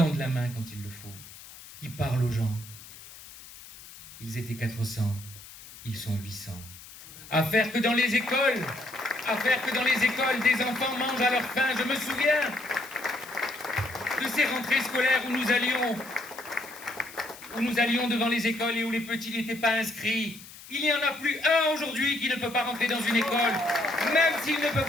la main quand il le faut, qui parlent aux gens. Ils étaient 400, ils sont 800. À faire que dans les écoles, des enfants mangent à leur faim. Je me souviens de ces rentrées scolaires où nous allions devant les écoles et où les petits n'étaient pas inscrits. Il n'y en a plus un aujourd'hui qui ne peut pas rentrer dans une école, même s'il ne peut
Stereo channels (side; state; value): left; noise; hiss, 17 dB below the sound